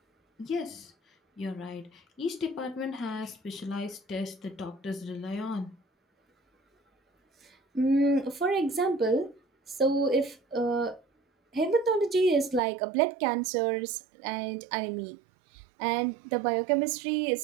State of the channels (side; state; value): left; drops out; at 12.6 s